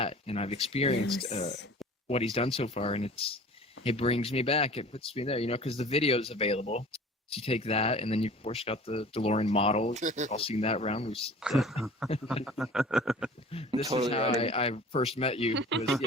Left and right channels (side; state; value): both; normal; correlation 0.44